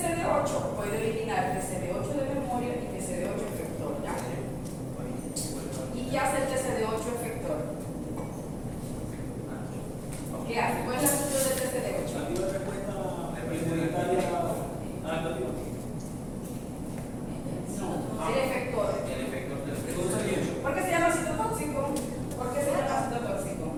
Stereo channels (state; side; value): identical; both; correlation 1.00